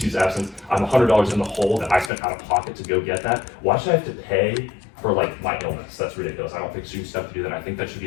absence, I'm $100 in the hole that I spent out of pocket to go get that. Why should I have to pay for like my illness? That's ridiculous. I don't think students have to do that. I think that should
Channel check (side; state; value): right; drops out; at 2.1 s